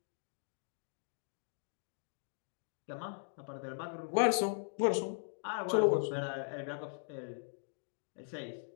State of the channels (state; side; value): silent; right; digital silence